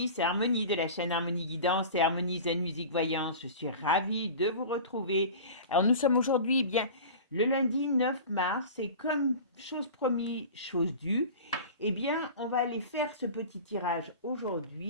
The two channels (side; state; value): both; inverted; correlation -0.36